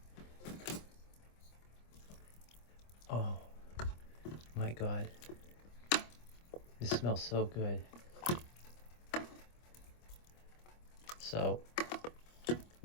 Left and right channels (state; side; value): late; right; 25 ms